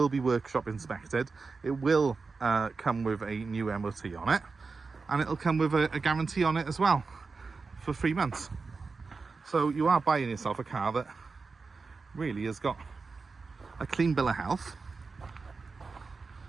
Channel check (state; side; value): quieter; left; 4.4 dB